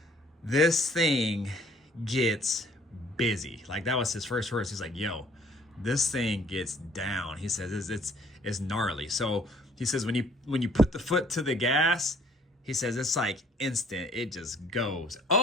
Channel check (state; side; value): normal; both; correlation 0.59